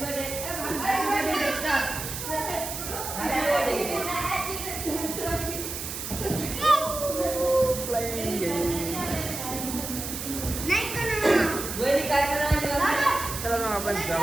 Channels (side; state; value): right; noise; hiss, 6 dB below the sound